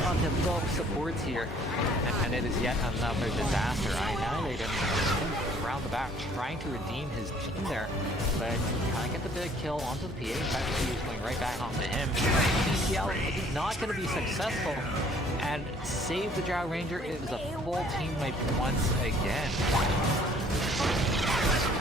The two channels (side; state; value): both; normal; correlation 0.58